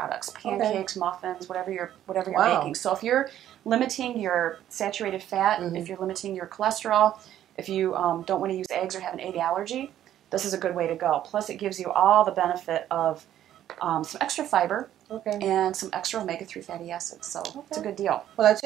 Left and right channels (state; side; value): quieter; left; 11.7 dB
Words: pancakes, muffins, whatever you're baking. So if you're limiting your saturated fat, if you're limiting your cholesterol, if you don't want to use eggs or have an egg allergy, this is a good way to go. Plus it gives you all the benefit of some extra fiber and some extra omega-3 fatty acids. So it's a good deal. Well, I